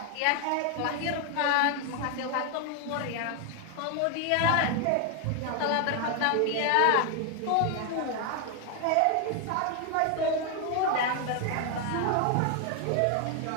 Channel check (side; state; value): both; different; correlation 0.01